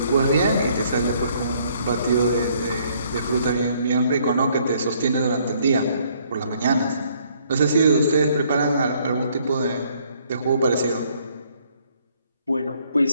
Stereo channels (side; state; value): both; inverted; correlation -0.65